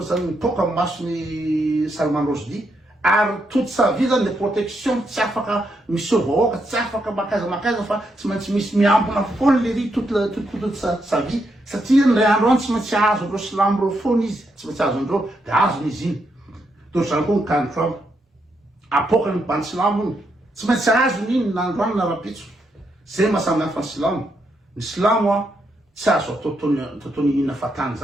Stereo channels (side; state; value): both; normal; correlation 0.80